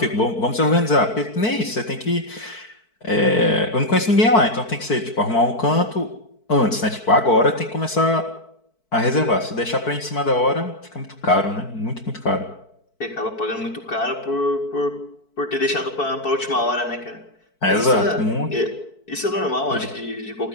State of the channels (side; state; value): right; late; 4.6 ms